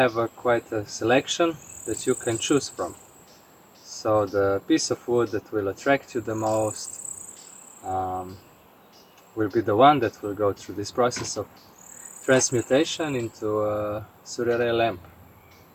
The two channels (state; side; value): identical; both; correlation 1.00